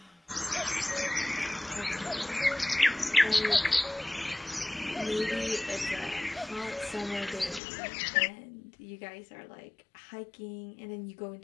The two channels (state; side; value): drops out; right; at 7.6 s